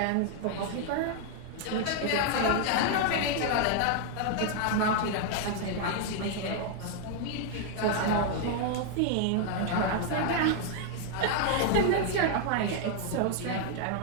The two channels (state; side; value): different; both; correlation 0.00